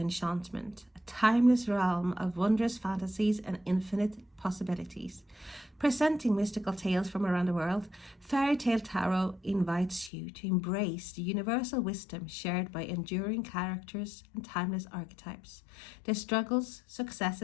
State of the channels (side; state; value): right; drops out; at 10.1 s